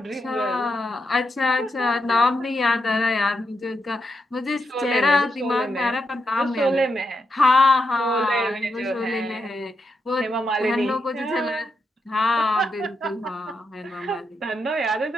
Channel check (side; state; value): both; normal; correlation 0.84